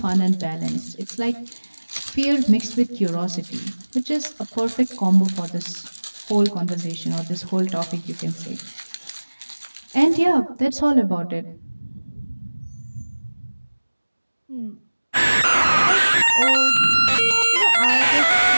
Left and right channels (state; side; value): inverted; both; correlation -1.00